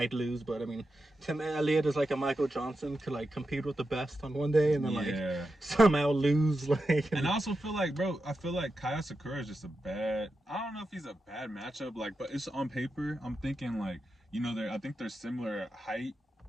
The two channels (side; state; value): both; normal; correlation 0.89